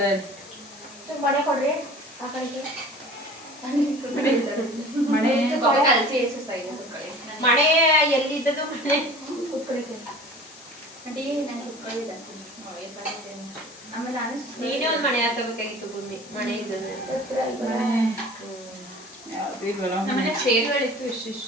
ಮನೆ ಕೊಡ್ರಿ ಆ ಕಡೆಗೆ ಮಳೆ ಮಳೆ ಎಲ್ಲಿದ್ದದು ಮನೆ ನೀನೇ ಒಂದ್ ಮನೆ ಹಾಕಬೇಕಾಗಿತ್ತು ಭೂಮಿ ಮನೆ ಇದ್ದದ ನಮ್ಮನೆ ಚೇರ್ಗಳಿತ್ತು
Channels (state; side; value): noise; left; hiss, 19 dB below the sound